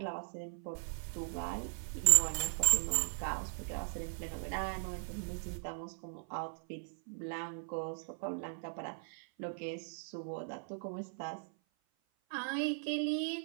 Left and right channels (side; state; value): left; silent; 52 dB below the other